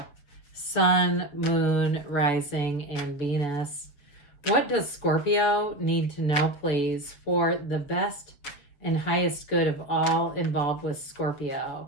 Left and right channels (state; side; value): late; right; 7.2 ms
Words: Sun, Moon, Rising, and Venus. What does Scorpio need to know, please, for the best and highest good of all involved with Scorpio?